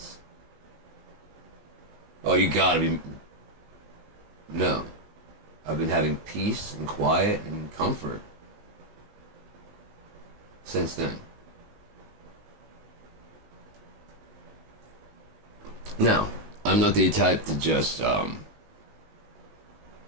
Oh, you gotta be... No. I've been having peace and quiet and comfort since then. Now, I'm not the type to just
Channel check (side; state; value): left; late; 19 ms